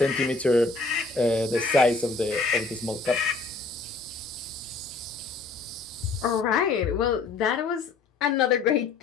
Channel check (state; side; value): quieter; right; 4.0 dB